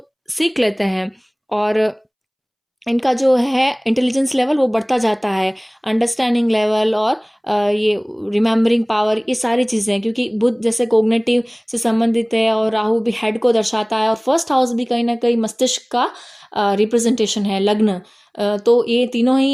सीख लेते हैं और इनका जो है इंटेलिजेंस लेवल वो बढ़ता जाता है, अंडरस्टैंडिंग लेवल और ये रिमेम्बरिंग पावर, ये सारी चीज़ें, क्योंकि बुध जैसे कोग्निटिव से संबंधित है और राहु भी हेड को दर्शाता है और फर्स्ट हाउस भी कहीं ना कहीं मस्तिष्क का रिप्रेजेंटेशन है, लग्न। तो ये तीनों ही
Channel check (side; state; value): both; identical; correlation 1.00